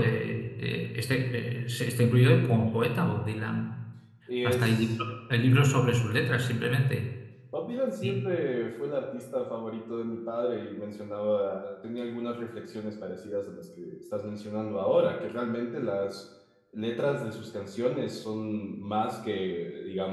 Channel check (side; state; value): both; identical; correlation 1.00